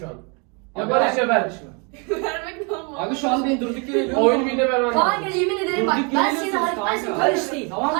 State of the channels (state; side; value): quieter; left; 34.0 dB